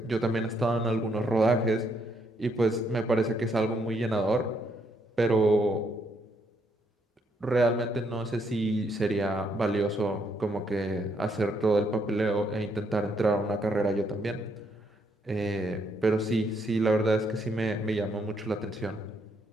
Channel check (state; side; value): normal; both; correlation 0.73